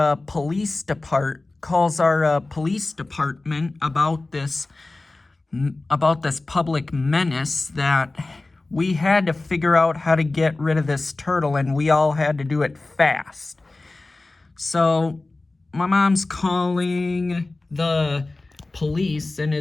police department about this public menace that we had to figure out how to get rid of this turtle, and we all had to do it fast. So my mom's calling the police and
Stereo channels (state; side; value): quieter; right; 3.1 dB